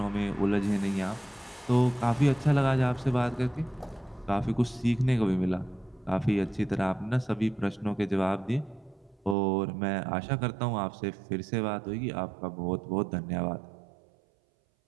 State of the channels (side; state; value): left; drops out; at 9.3 s